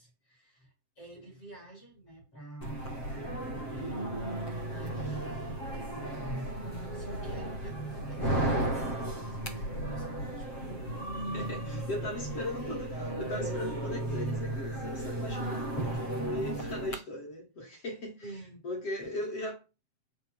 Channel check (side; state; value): right; late; 7.6 ms